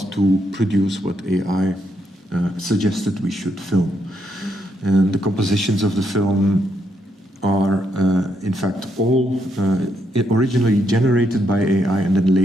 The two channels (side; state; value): both; normal; correlation 0.77